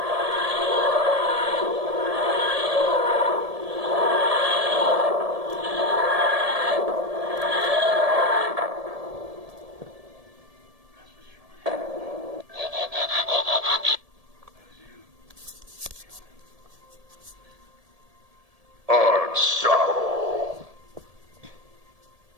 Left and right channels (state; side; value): late; left; 1.7 ms